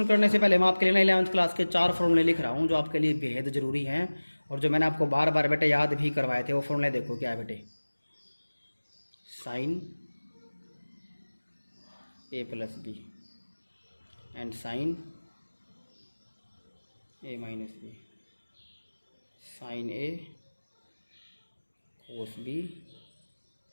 करने से पहले मैं आपके लिए ना 11th क्लास के 4 फॉर्मूले लिख रहा हूँ जो आपके लिए बेहद ज़रूरी हैं और जो मैंने आपको बार बार बेटे याद भी करवाए थे। वो फॉर्मूले देखो क्या है बेटे, sine A plus B and sine A minus B, sine A cos B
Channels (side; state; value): both; inverted; correlation -1.00